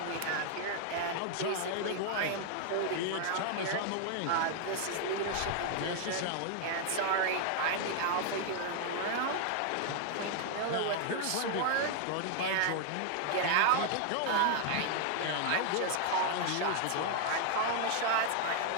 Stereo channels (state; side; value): different; both; correlation 0.00